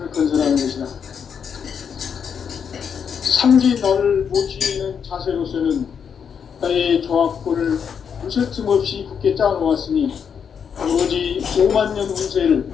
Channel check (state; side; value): quieter; right; 7.1 dB